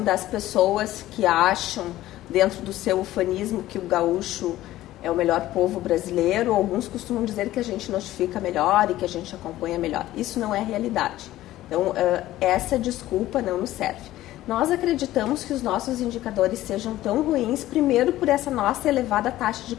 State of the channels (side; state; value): right; quieter; 15.1 dB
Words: das pessoas que acham, dentro do seu ufanismo, que o gaúcho é o melhor povo brasileiro. Alguns costumam dizer que a gente notifica melhor e que a gente acompanha melhor. Isso não é realidade. Então, essa desculpa não nos serve. Nós acreditamos que os nossos indicadores sejam tão ruins, primeiro por essa nossa elevada taxa de